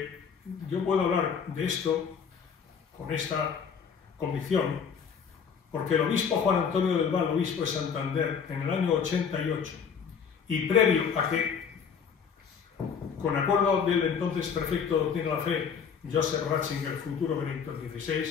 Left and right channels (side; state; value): right; quieter; 6.7 dB